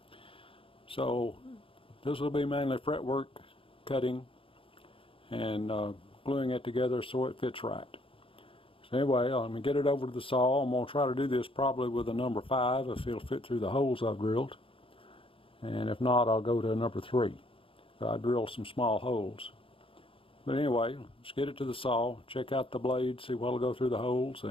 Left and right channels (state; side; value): late; right; 0.26 ms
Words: So this will be mainly fretwork cutting and gluing it together so it fits right. So anyway, I'm going to get it over to the saw. I'm going to try to do this probably with a number 5 if it'll fit through the holes I've drilled. And if not, I'll go to a number 3. I drilled some small holes. But anyway, let's get it to the saw, check out the blade, see what'll go through the holes,